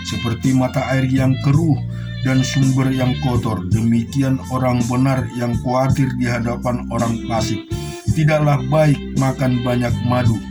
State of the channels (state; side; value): identical; both; correlation 1.00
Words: Seperti mata air yang keruh dan sumber yang kotor, demikian orang benar yang khawatir di hadapan orang fasik. Tidaklah baik makan banyak madu,